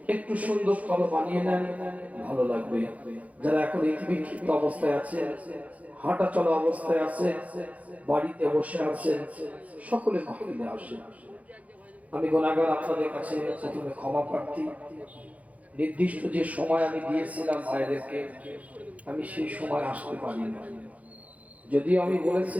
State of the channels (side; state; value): left; late; 0.069 ms